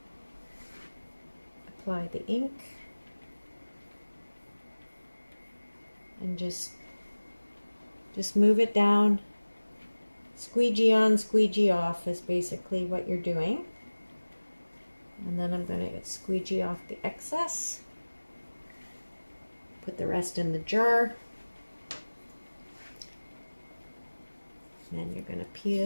apply the ink and just move it down. Squeegee on, squeegee off is basically what you're doing. And then I'm going to squeegee off the excess. Put the rest in the jar. And then you're going to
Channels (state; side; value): inverted; both; correlation -1.00